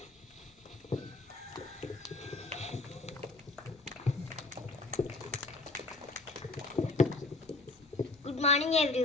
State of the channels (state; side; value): quieter; right; 3.1 dB